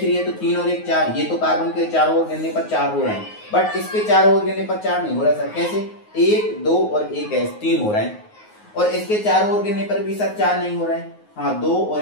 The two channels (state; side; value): late; right; 9.5 ms